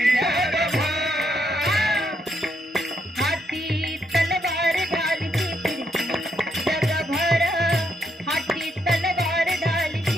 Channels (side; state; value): both; normal; correlation 0.77